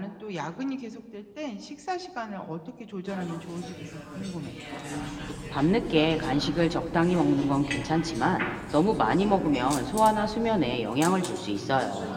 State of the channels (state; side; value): identical; both; correlation 1.00